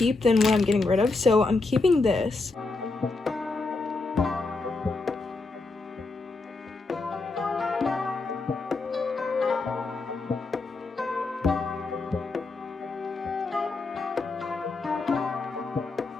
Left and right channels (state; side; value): quieter; right; 3.6 dB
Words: than what I'm getting rid of. So I'm keeping this.